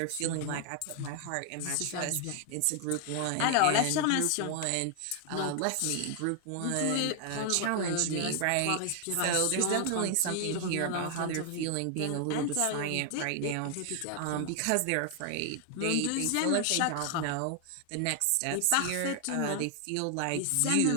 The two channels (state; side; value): different; both; correlation 0.00